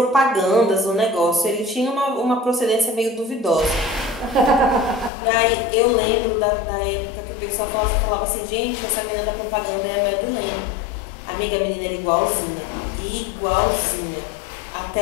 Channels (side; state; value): right; drops out; at 5.1 s